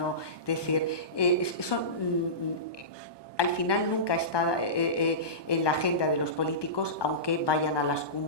es decir, eso al final nunca está en la agenda de los políticos, aunque vayan a las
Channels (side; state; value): right; late; 1.2 ms